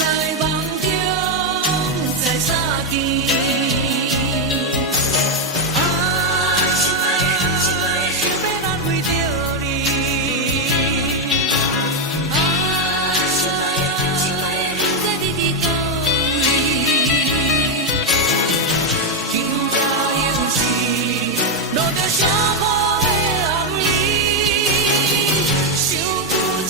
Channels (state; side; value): normal; both; correlation 0.03